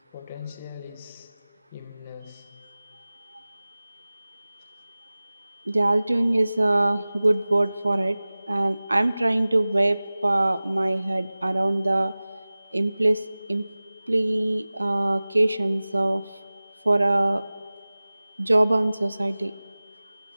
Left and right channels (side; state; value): both; inverted; correlation -0.98